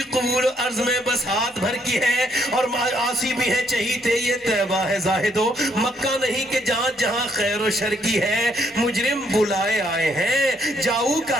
قبول عرض میں بس ہاتھ بھر کی ہے. اور آسی بھی ہے چہیتے یہ طیبہ ہے زاہدو, مکہ نہیں کہ جہاں جہاں خیر و شر کی ہے. مجرم بلائے آئے ہیں جاؤ کا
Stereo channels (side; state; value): both; normal; correlation 0.71